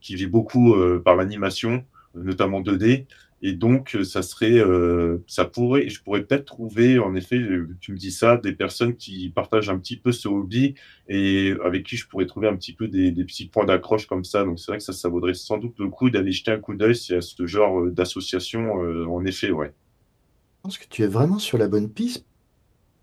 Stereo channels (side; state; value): both; identical; correlation 1.00